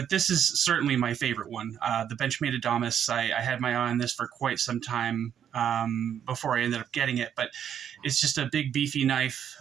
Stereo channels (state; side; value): quieter; left; 9.0 dB